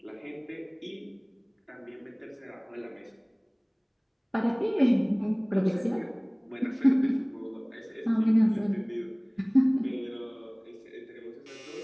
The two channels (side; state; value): both; identical; correlation 1.00